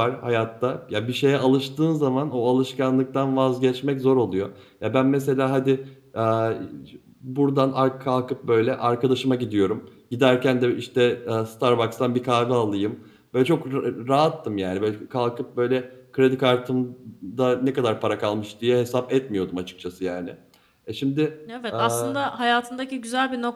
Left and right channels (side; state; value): both; identical; correlation 1.00